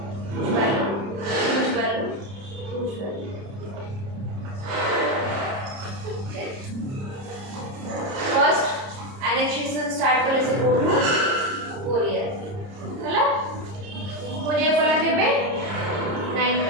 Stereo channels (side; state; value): left; late; 30 ms